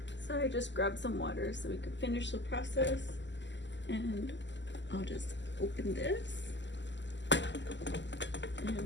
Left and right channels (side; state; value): right; late; 0.53 ms